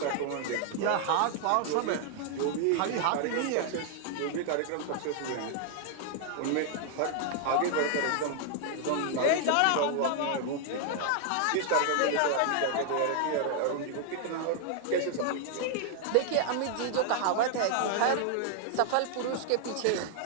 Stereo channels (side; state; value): both; different; correlation 0.00